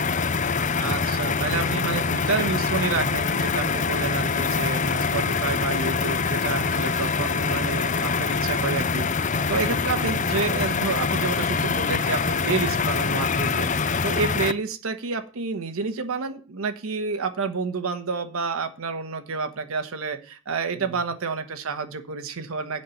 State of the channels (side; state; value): both; normal; correlation 0.04